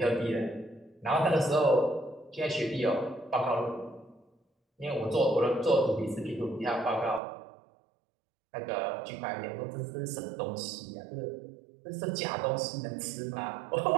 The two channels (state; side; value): drops out; left; at 7.2 s